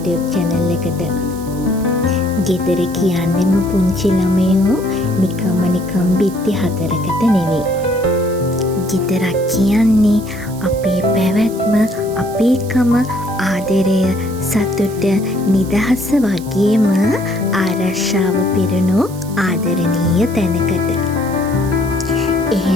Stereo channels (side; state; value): right; noise; hiss, 18 dB below the sound